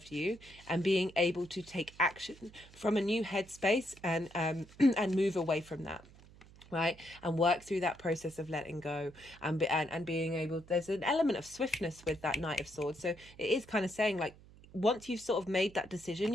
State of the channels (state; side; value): noise; right; hum, 22 dB below the sound